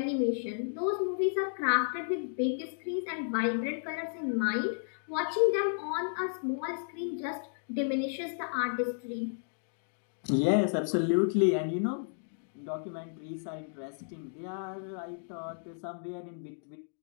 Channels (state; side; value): silent; right; digital silence